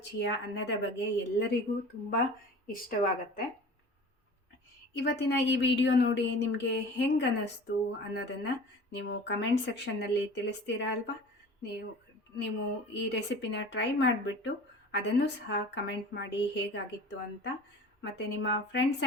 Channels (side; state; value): both; normal; correlation 0.40